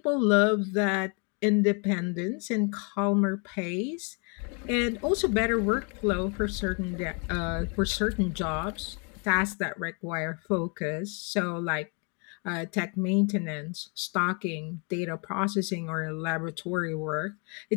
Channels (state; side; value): quieter; right; 36.0 dB